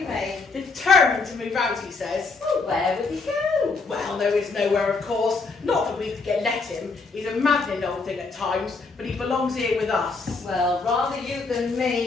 me. Determined to move out, he says. Oh, where would he go? Well, there is nowhere, of course. Not that we could let him. He's a maddening old thing at times, but he belongs here with us. Well, rather you than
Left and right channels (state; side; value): quieter; right; 4.2 dB